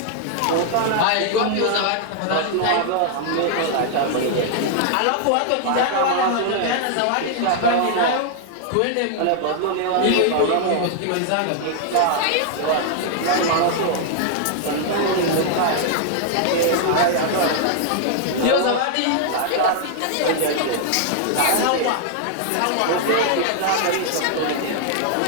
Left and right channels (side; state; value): both; different; correlation 0.00